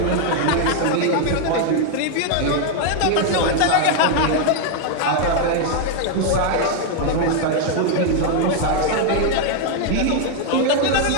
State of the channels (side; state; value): both; different; correlation 0.00